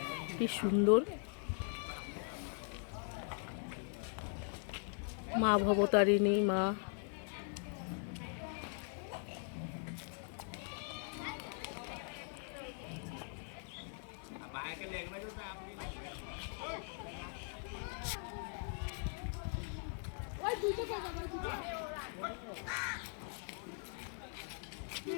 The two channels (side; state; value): right; silent; 50 dB below the other